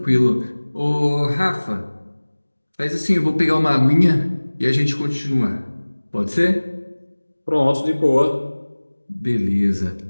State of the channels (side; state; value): both; inverted; correlation -1.00